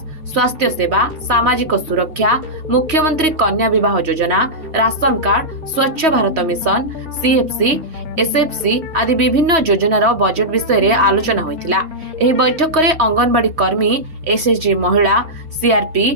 स्वास्थ्य सेवा, सामाजिक सुरक्षा, मुख्यमंत्री कन्या विवाह योजना, राशन कार्ड, स्वच्छ भारत मिशन, सीएफसी, एसएफसी आदि विभिन्न योजनार बजेट विषय रे आलोचना होइतिला। एही बैठक में अंगनवाड़ी कर्मी, एसएचजी महिला, सीआरपी,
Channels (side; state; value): left; late; 3.1 ms